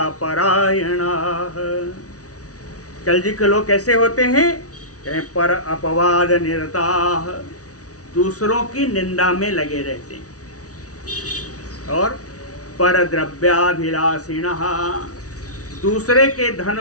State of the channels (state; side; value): late; right; 0.67 ms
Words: परायणाः। कलयुग के लोग कैसे होते हैं? कहे पर अपवाद निरताः, दूसरों की निंदा में लगे रहते हैं। और पर द्रव्याभिलाषिणः, दूसरे के धन